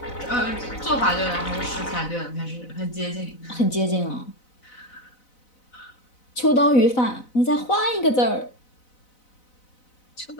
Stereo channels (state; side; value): late; right; 4.0 ms